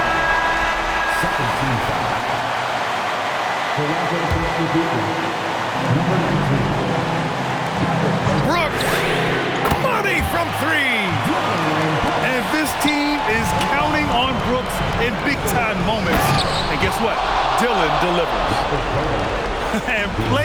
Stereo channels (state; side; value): identical; both; correlation 1.00